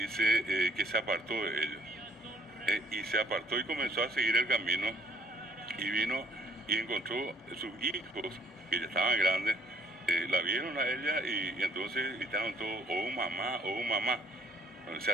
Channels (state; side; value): normal; both; correlation 0.65